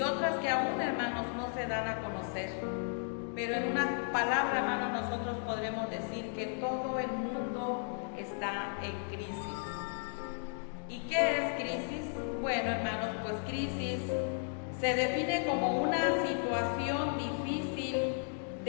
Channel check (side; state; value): right; silent; 55 dB below the other